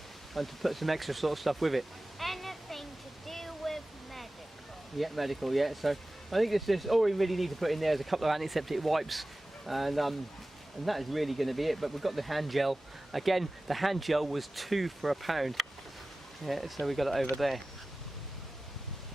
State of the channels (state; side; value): normal; both; correlation 0.97